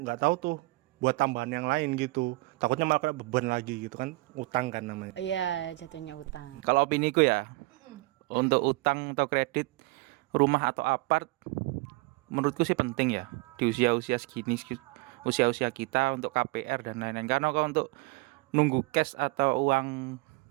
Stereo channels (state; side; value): quieter; left; 22.2 dB